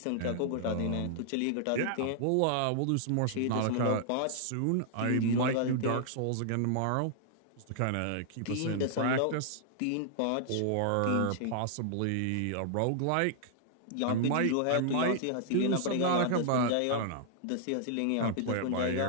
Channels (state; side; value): different; both; correlation -0.01